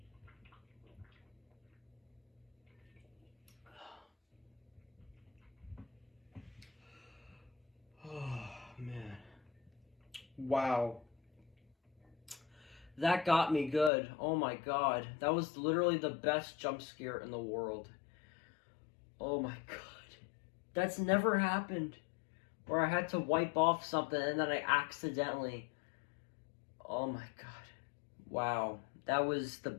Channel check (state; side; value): drops out; right; at 13.9 s